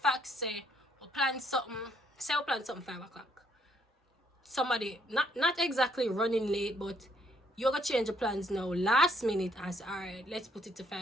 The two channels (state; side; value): normal; both; correlation 0.69